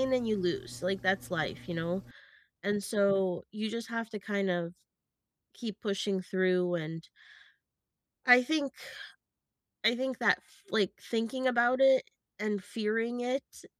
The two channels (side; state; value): both; identical; correlation 1.00